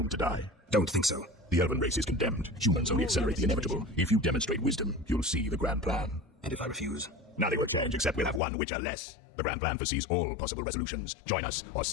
to die. Don't think so. The elven race is condemned. Humans only accelerate the inevitable. If you demonstrate wisdom, you'll see the grand plan. And if I refuse? Nothing will change except we'll have one Witcher less. The grand plan foresees all possible resolutions. Join us or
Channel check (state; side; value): drops out; right; at 8.4 s